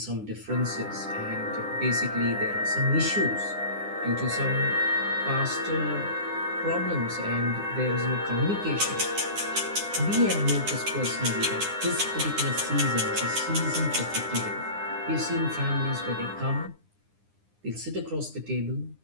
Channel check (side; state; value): left; late; 9.8 ms